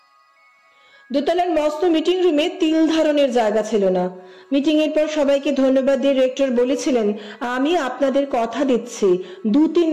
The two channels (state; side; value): identical; both; correlation 1.00